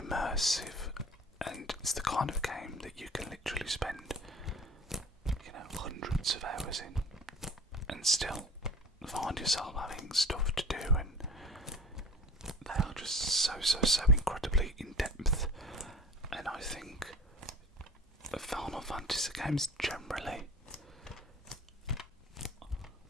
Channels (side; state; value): both; normal; correlation 0.42